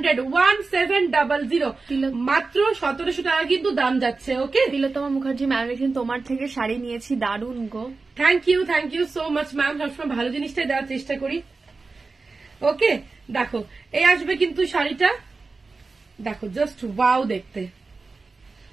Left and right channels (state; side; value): quieter; left; 4.0 dB